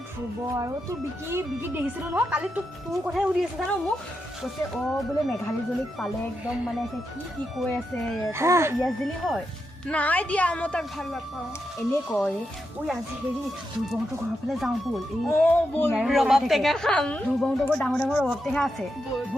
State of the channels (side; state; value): both; normal; correlation 0.85